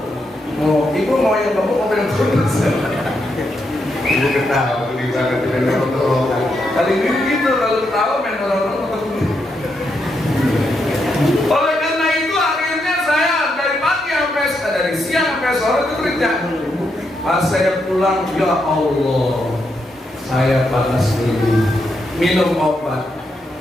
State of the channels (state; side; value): normal; both; correlation 0.81